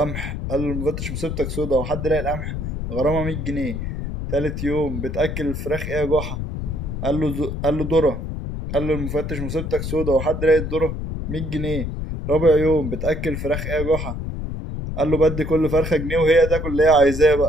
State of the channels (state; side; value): noise; left; rumble, 5 dB below the sound